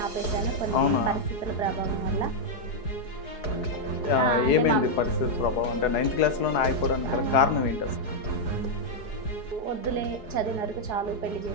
ఆపేసాను కొన్ని పరిస్థితుల ప్రభావం వల్ల. ఏమైంది పరిస్థితుల ప్రభావం అంటే 9th క్లాస్లోనే ఆగిపోవడానికి గల కారణం ఏంటి అసలు? వద్దులే, చదివిన వరకు చాలు, పెళ్లి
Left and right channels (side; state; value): right; late; 4.7 ms